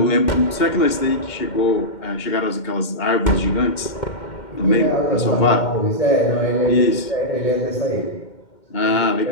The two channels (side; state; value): right; late; 2.2 ms